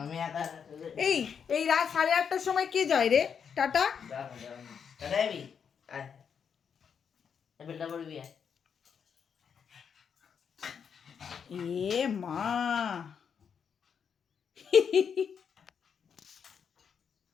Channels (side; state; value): right; quieter; 7.0 dB